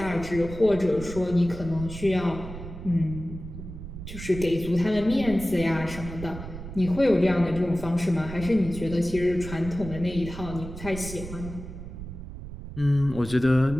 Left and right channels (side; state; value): right; noise; rumble, 11 dB below the sound